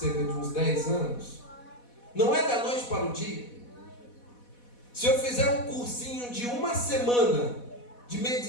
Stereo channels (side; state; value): right; late; 4.1 ms